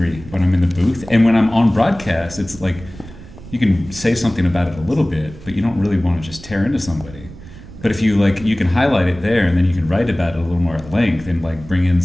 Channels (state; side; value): noise; right; rumble, 17 dB below the sound